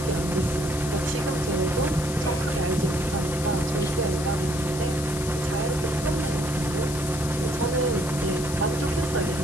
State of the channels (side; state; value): left; noise; hiss, 9 dB below the sound